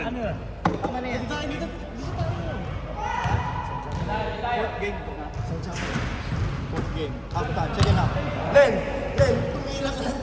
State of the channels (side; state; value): both; identical; correlation 1.00